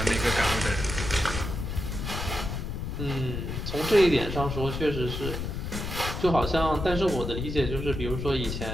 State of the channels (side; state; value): left; noise; rumble, 4 dB below the sound